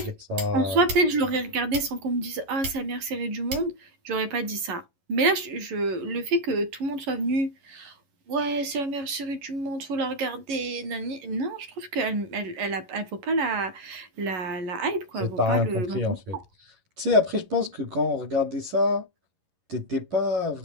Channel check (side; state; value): left; late; 11 ms